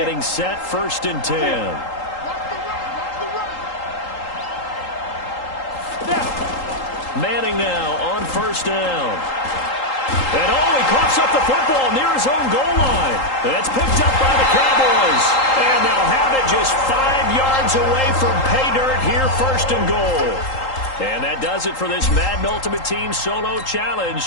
set. 1st and 10. Manning now on 1st down. And he coughs up the football near his own goal line. That's picked up by the Cowboys. And they'll have it just 5 yards away from pay dirt here, 1st and goal. And that does it for this Madden Ultimate Team Solo Challenge.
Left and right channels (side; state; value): right; late; 3.8 ms